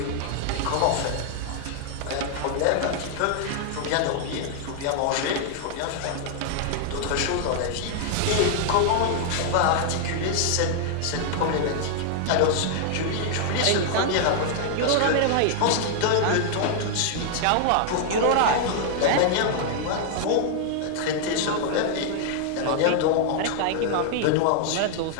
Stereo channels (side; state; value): both; different; correlation 0.00